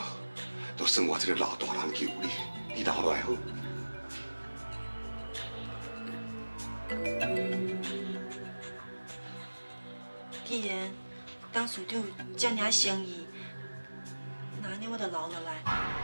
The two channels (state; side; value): inverted; both; correlation -1.00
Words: 都算我这个老大人救你，你留落来好。既然董事长这尔诚意，那安尼我就留落来。